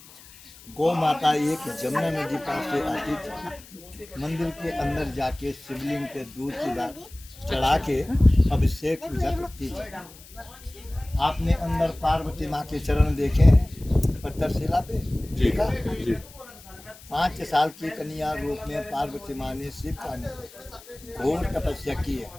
गौ माता एक जमुना नदी पास से आती थी। मंदिर के अंदर जाके शिवलिंग पे दूध की दाल चढ़ा के अभिषेक पूजा करती थी। आपने अंदर पार्वती माँ के चरण देखे हैं पत्थर शिला पे? देखा? 5 साल की कन्या रूप में पार्वती माँ ने शिव का घोर तपस्या की है,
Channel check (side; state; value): left; noise; hiss, 21 dB below the sound